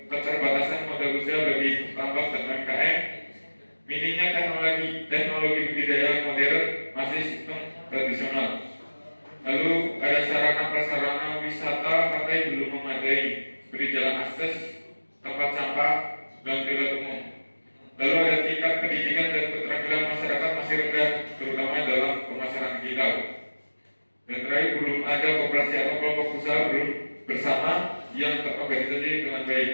keterbatasan modal usaha bagi tambang dan UMKM, minimnya teknologi budidaya modern masih sistem tradisional. Lalu ada sarana prasarana wisata pantai belum memadai seperti jalan akses, tempat sampah, dan toilet umum. Lalu ada tingkat pendidikan dan keterampilan masyarakat masih rendah, terutama dalam pemasaran digital. Dan terakhir, belum ada koperasi atau kelompok usaha belum bersama yang terorganisasi dengan baik.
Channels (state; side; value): inverted; both; correlation -1.00